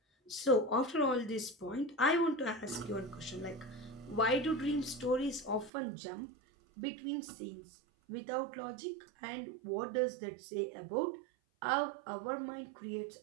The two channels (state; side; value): drops out; left; at 5.7 s